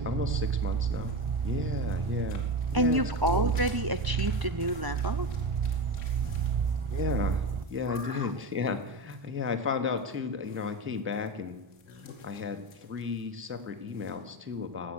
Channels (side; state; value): left; late; 1.0 ms